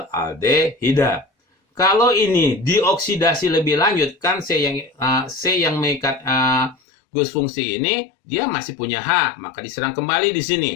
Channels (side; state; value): right; drops out; at 6.8 s